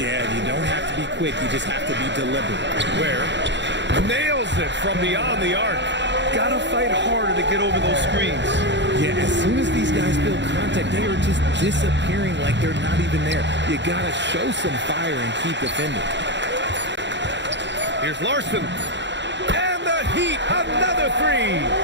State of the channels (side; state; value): left; late; 0.52 ms